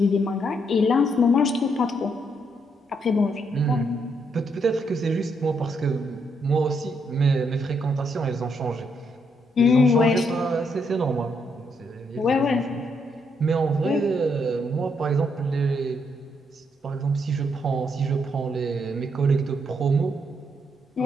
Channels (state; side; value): normal; both; correlation 0.75